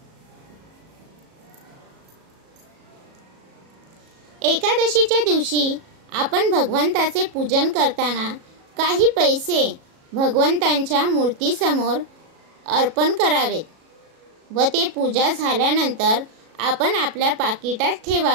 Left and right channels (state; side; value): late; left; 37 ms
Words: एकादशीच्या दिवशी आपण भगवंताचे पूजन करताना काही पैसे भगवंतांच्या मूर्तीसमोर अर्पण करावेत व ते पूजा झाल्यानंतर आपण आपल्या पाकिटात